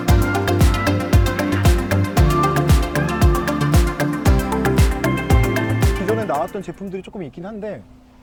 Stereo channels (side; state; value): both; identical; correlation 1.00